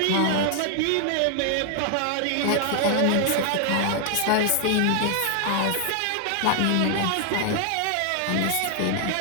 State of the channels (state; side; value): different; both; correlation 0.00